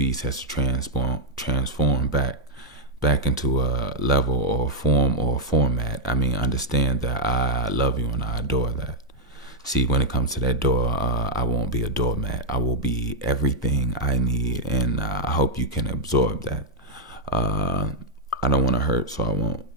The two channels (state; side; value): normal; both; correlation -0.03